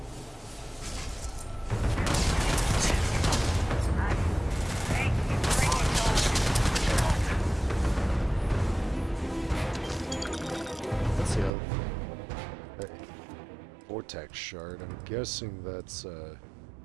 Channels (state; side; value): drops out; left; at 11.5 s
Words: Vortex shard. I'm guessing that's